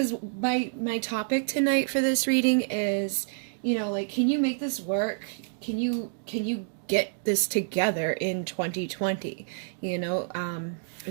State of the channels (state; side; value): silent; left; digital silence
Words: my topic tonight for this reading is, can you make this work? Can you get this together in 2020?